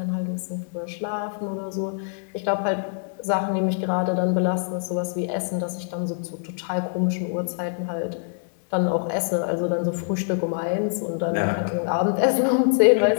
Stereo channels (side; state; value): right; silent; 62 dB below the other